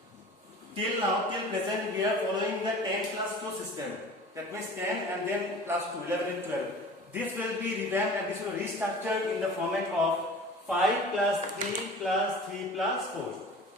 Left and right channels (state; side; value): normal; both; correlation 0.41